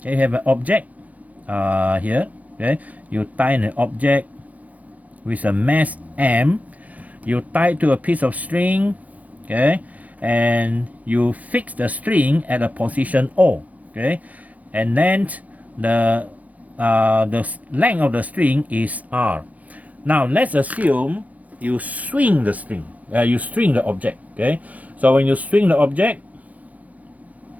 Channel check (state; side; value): late; left; 0.074 ms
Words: you have an object here. Okay, you tie an object with a mass m. You tie it to a piece of string, okay, and you fix the string at a position O, okay, and then the length of the string is R. Now let's assume you swing the string, you string the object, okay. So when you swing the object